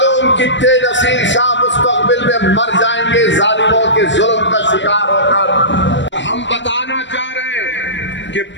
कितने नसीर शाह मुस्तकबिल में मर जाएंगे जालिमों के जुल्म का शिकार होकर। हम बताना चाह रहे हैं कि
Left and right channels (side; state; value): right; late; 0.53 ms